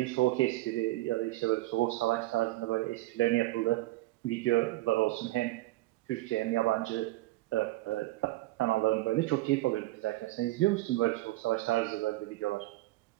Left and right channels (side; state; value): left; quieter; 18.3 dB